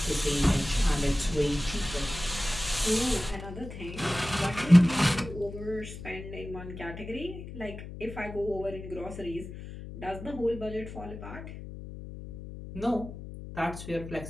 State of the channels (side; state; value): left; noise; hum, 11 dB below the sound